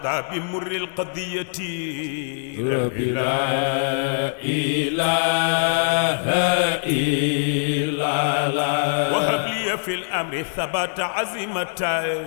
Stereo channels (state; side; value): silent; right; digital silence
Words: بمر القضية ربي لا إله إلا الله وهب لي في الأمر ثبات